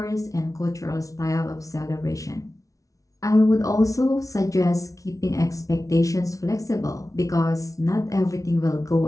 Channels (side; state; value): right; late; 0.17 ms